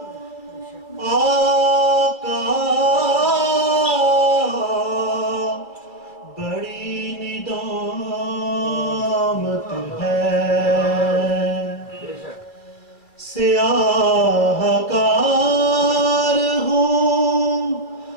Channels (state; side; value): late; right; 2.4 ms